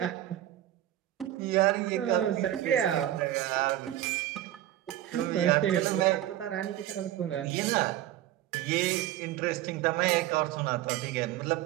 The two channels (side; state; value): left; quieter; 13.2 dB